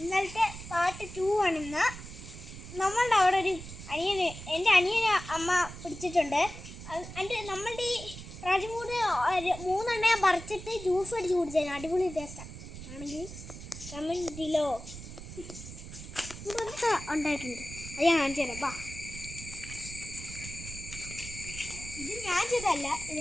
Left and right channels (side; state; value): right; noise; rumble, 12 dB below the sound